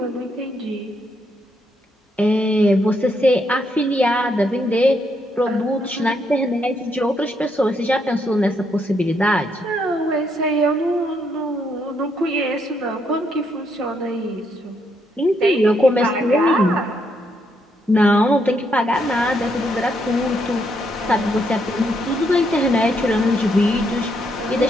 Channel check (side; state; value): both; normal; correlation 0.76